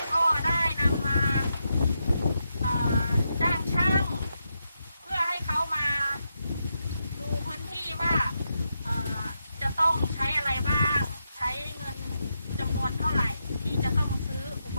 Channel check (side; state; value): both; inverted; correlation -0.84